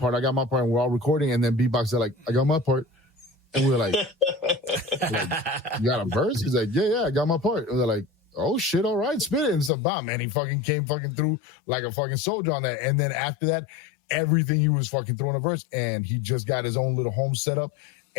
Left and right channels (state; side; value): drops out; right; at 9.7 s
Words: we're all recording. And then Beatbox said like, I got my part. And we're like, you got a verse? He's like, yeah, I got my part. And they're like, oh shit, all right, spit it. And so, man, he fucking came fucking through like a fucking soldier on that. And then after that, everything he was fucking throwing a verse, and he just got his own little home set up.